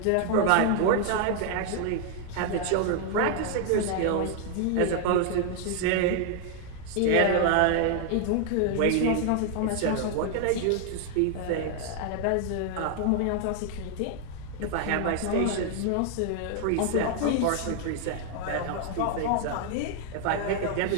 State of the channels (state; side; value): different; both; correlation 0.00